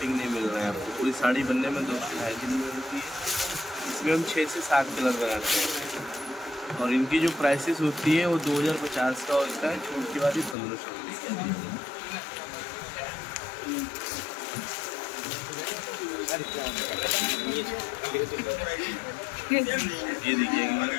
नहीं मिल रहा है आपको, पूरी साड़ी बनने में 2 से 2.5 दिन में होती है। इसमें हम 6 से 7 कलर बनाते हैं, और इनकी जो प्राइसेस होती है वो 2050 का होता है, छूट के बाद ही 1500 रुपये की आती है। ये देखिए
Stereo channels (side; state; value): right; drops out; at 10.6 s